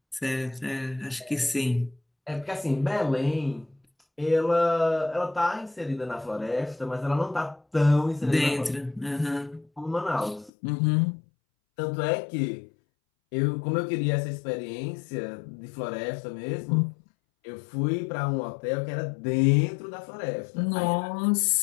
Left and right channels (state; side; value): drops out; right; at 10.5 s